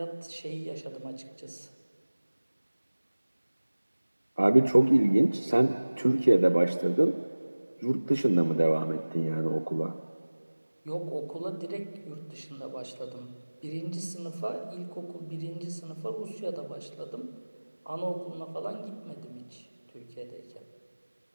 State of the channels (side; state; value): both; inverted; correlation -1.00